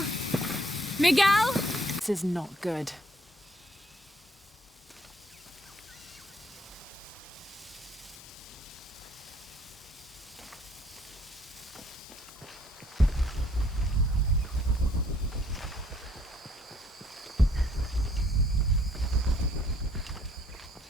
Miguel? This is not good.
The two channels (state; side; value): normal; both; correlation 0.64